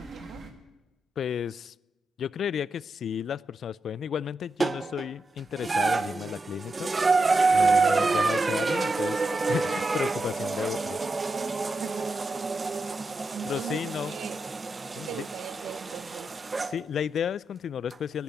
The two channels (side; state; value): both; normal; correlation 0.87